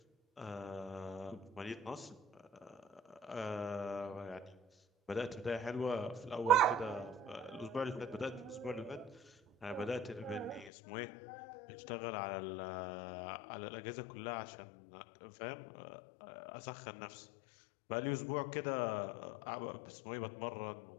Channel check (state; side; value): drops out; right; at 10.7 s